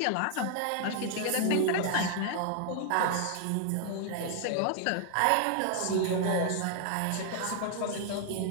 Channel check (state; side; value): different; both; correlation 0.00